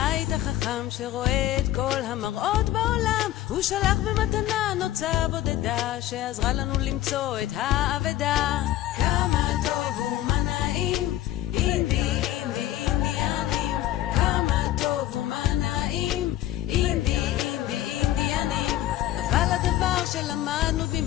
החכם שרואה את כל המראות בעולם. הוא שלח במתנה נוצה בודדה שעזרה לנו למצוא את האבדה. כמה טוב ומה נעים, אינדי אינדי אינדיאנים. כמה טוב ומה נעים, אינדי אינדי אינדיאנים. אבל הדבר שלמדנו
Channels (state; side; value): quieter; right; 13.8 dB